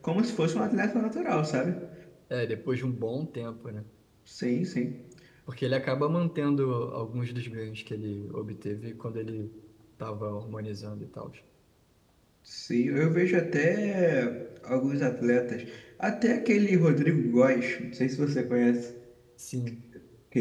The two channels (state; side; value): identical; both; correlation 1.00